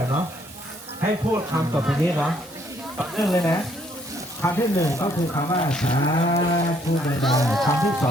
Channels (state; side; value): normal; both; correlation 0.67